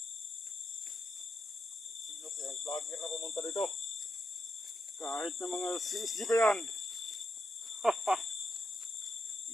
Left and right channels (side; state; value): both; normal; correlation 0.84